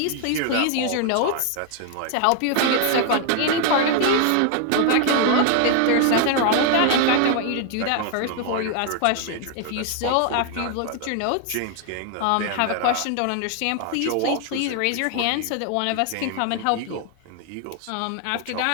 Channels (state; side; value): different; both; correlation 0.00